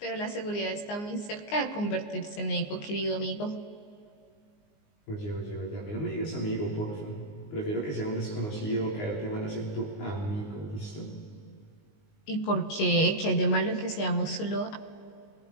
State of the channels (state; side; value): late; right; 19 ms